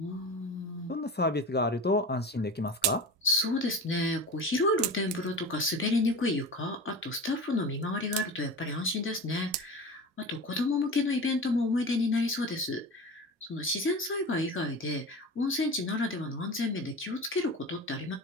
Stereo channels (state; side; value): normal; both; correlation 0.31